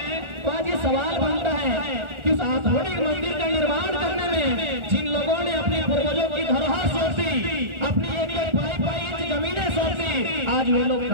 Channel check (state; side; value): late; left; 1.4 ms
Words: तो आज ये सवाल बनता है कि उस आधुनिक मंदिर का निर्माण करने में जिन लोगों ने अपने पूर्वजों की धरोहर सौंपी, अपनी एक पाई इंच जमीनें सौंपी, आज वे लोग